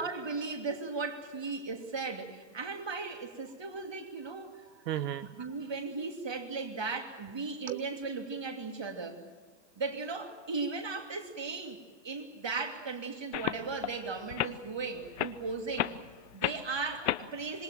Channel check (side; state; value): left; late; 1.2 ms